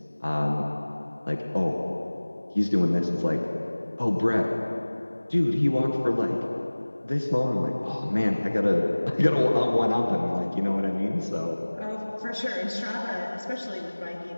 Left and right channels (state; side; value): inverted; both; correlation -1.00